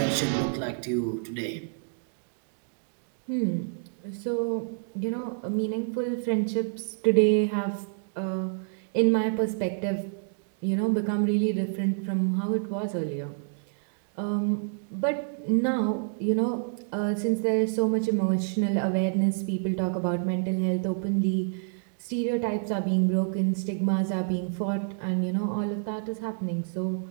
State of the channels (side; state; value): left; silent; digital silence